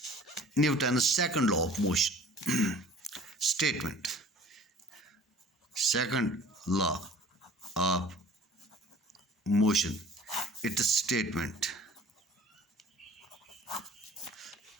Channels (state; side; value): normal; both; correlation 0.48